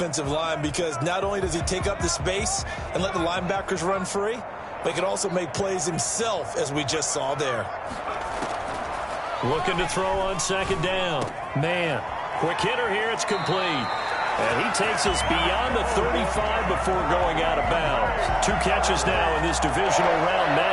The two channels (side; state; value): both; identical; correlation 1.00